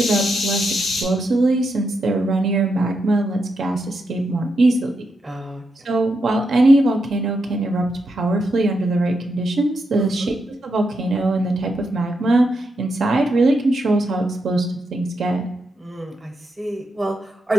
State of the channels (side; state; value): both; normal; correlation 0.83